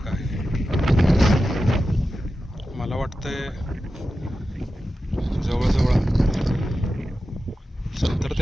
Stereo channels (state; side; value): normal; both; correlation 0.92